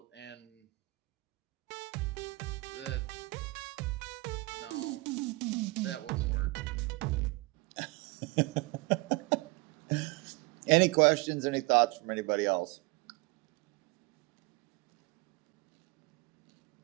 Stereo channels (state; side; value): quieter; left; 23.9 dB